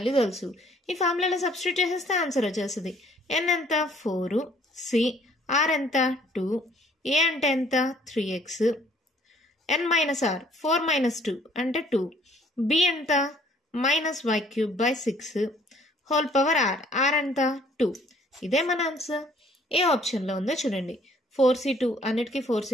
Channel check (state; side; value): normal; both; correlation 0.60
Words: తెలుసు. ఈ ఫార్ములాలో సబ్స్టిట్యూట్ చేసేస్తే ఆన్సర్ వచ్చేస్తుంది. ఎన్ ఎంత? 4, సి ఆర్ ఎంత? 2, ఏ అంటే ఎంత? 3x, N minus are 4 minus 2 అంటే 2, బి ఎంత? Minus y cube by 6 whole power r, r ఎంత? 2. ఇదే మన ఆన్సర్. ఏ ఆప్షన్లో ఉందో చూడండి. 4c2 అన్నిటికీ